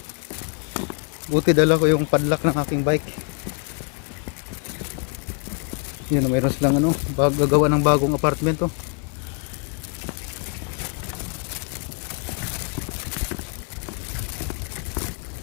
Buti dala ko yung padlock ng aking bike. Yun, mayroon silang ano, gagawa ng bagong apartment to.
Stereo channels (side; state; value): right; quieter; 37.0 dB